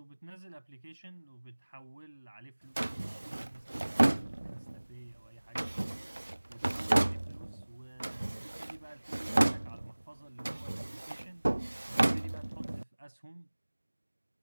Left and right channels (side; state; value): both; inverted; correlation -1.00